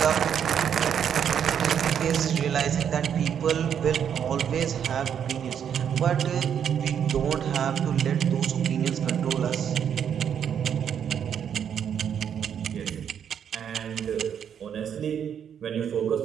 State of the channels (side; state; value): left; quieter; 8.4 dB